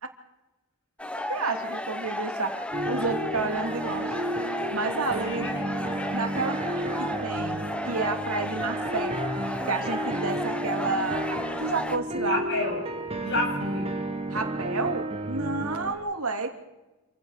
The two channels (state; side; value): normal; both; correlation 0.21